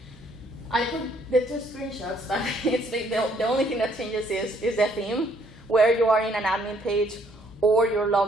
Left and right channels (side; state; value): both; normal; correlation 0.66